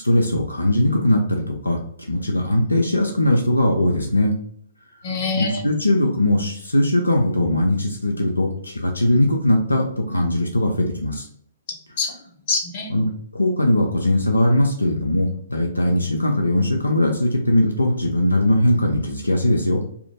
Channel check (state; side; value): inverted; both; correlation -0.84